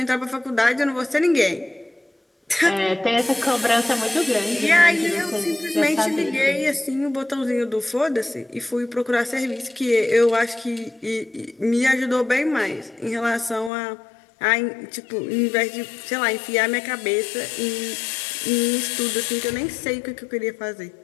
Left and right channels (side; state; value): right; drops out; at 13.7 s